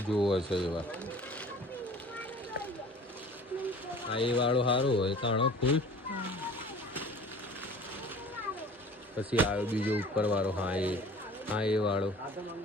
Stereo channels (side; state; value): both; normal; correlation 0.46